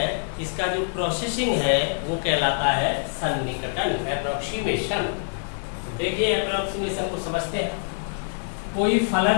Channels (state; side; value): silent; right; digital silence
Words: इसका जो प्रोसेसिंग है वो कहलाता है सन्निकटन, अप्रोक्सीमेशन। देखिए अप्रोक्सीमेशन को समझते हैं। कोई